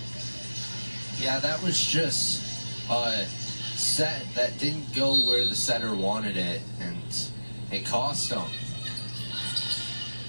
Yeah, that was just a set that didn't go where the setter wanted it, and it cost them.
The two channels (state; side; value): inverted; both; correlation -1.00